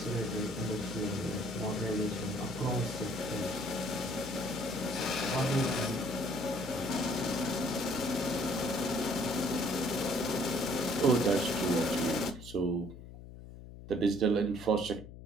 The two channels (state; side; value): noise; left; hum, 14 dB below the sound